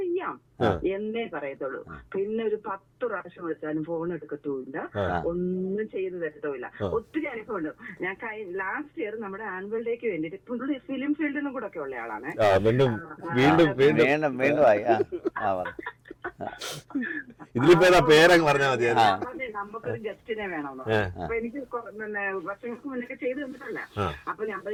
എന്നേ പറയത്തുള്ളൂ. പിന്നെ ഒരു 10 പ്രാവശ്യം വിളിച്ചാലും ഫോൺ എടുക്കത്തുമില്ല, ഒന്നും ചെയ്തു തരത്തുമില്ല. ഒത്തിരി അനുഭവമുണ്ട്. ഞാൻ ലാസ്റ്റ് ഇയർ നമ്മുടെ ആനുവൽ ഡേക്ക് വേണ്ടിട്ട് പുള്ളി ഫിലിം ഫീൽഡിനും കൂടെ ഒക്കെ ഉള്ള ആളാണ്. ഇതിലിപ്പോ പേരങ്ങ് പറഞ്ഞാൽ മതി. നമുക്കൊരു ഗസ്റ്റിനെ വേണമെന്നോ, അപ്പൊ എനിക്ക് വർഷങ്ങൾക്ക് മുന്നേ ചെയ്തു തന്നിട്ടല്ല. അപ്പൊ ഞാൻ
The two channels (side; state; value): both; identical; correlation 1.00